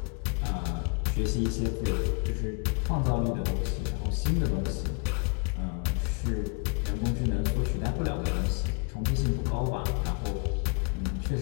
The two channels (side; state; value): right; quieter; 37.7 dB